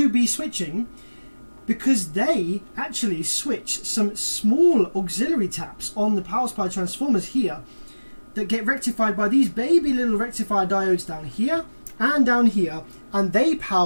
be switching, because they actually switch some small auxiliary taps on the power supply transformers here that get rectified by these baby little rectifier diodes down here and down here, and they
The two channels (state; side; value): inverted; both; correlation -1.00